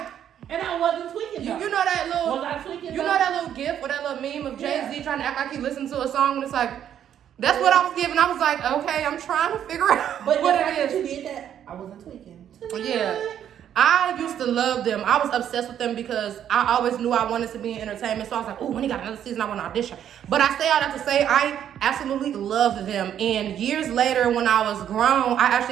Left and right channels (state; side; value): quieter; left; 9.9 dB